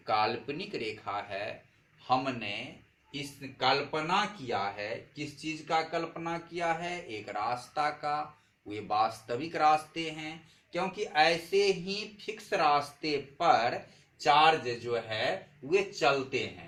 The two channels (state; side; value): identical; both; correlation 1.00